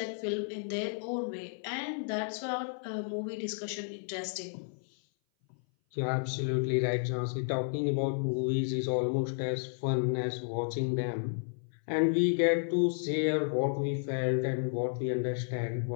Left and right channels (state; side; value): silent; right; 56 dB below the other